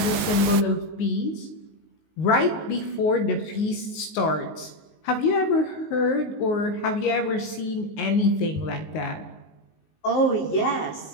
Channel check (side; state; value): right; late; 19 ms